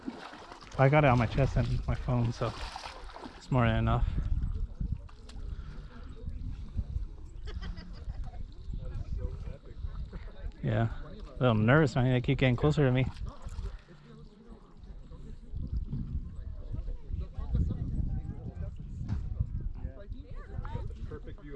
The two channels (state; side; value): identical; both; correlation 1.00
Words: I got it on my chest and my phone, so it's more than enough. Yeah, a little nervous, man. They keep getting closer to me.